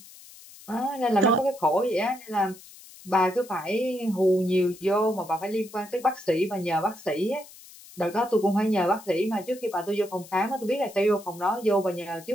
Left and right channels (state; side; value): noise; left; hiss, 20 dB below the sound